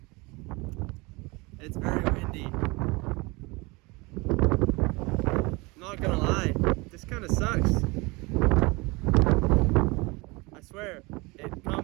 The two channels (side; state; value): left; quieter; 25.4 dB